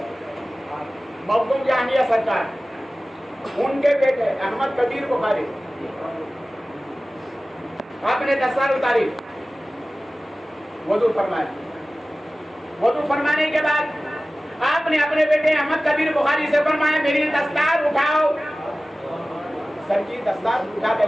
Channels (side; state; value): both; normal; correlation 0.97